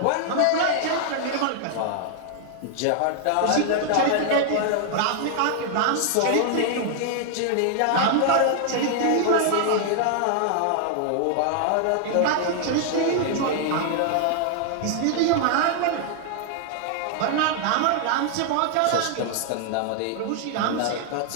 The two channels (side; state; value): both; different; correlation 0.00